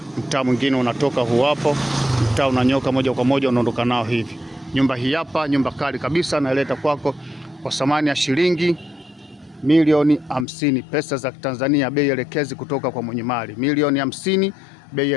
Mtaa mwingine unatoka huu hapo. Mtaa unanyoka moja kwa moja unaondoka nao hivi. Nyumba hii hapa, nyumba kali kabisa, naileta kwako kwa thamani ya shilingi milioni 50 pesa za Tanzania, bei elekezi kutoka kwa mwenye mali. Milioni 50 bei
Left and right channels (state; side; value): drops out; right; at 10.5 s